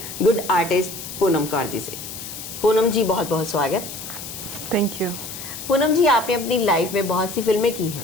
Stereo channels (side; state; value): left; noise; hiss, 10 dB below the sound